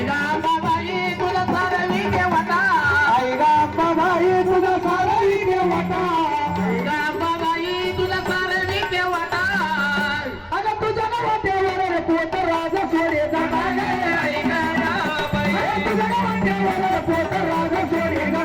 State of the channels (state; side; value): identical; both; correlation 1.00